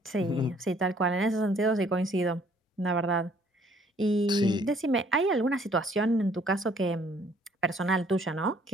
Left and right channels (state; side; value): normal; both; correlation 0.61